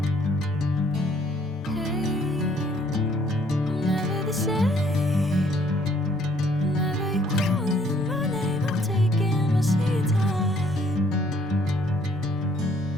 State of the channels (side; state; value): both; normal; correlation 0.63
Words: Hey, I'm never the same. Whenever you're calling my name, I'm taking my sweet time.